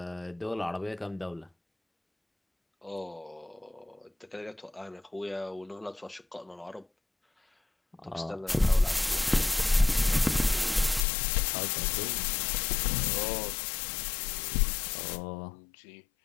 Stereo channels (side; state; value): right; drops out; at 11.1 s